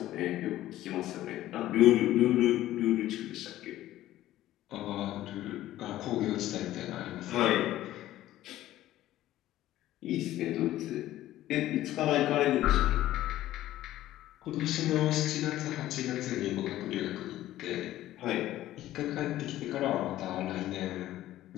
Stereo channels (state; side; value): quieter; right; 14.3 dB